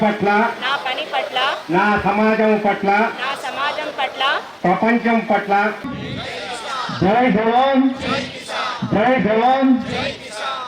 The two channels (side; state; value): both; identical; correlation 1.00